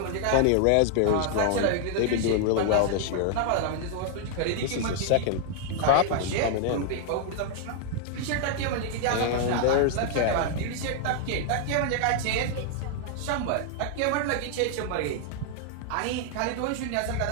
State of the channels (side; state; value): both; different; correlation -0.01